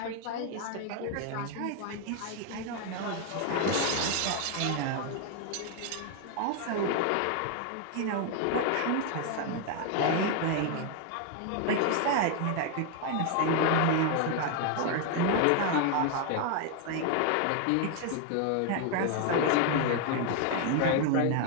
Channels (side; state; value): both; different; correlation 0.00